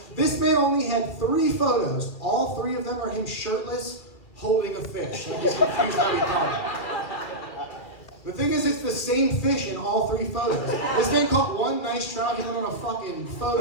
this man only had 3 photos. All 3 of them are him shirtless, holding a fish. I'm just confused how he caught it. The thing is, it's the same fish in all 3 photos. This man caught one nice trout, he went on a fucking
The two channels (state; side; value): late; right; 2.2 ms